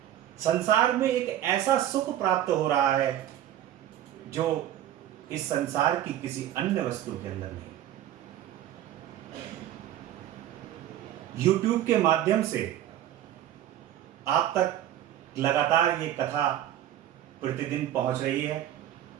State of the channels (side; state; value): left; quieter; 11.9 dB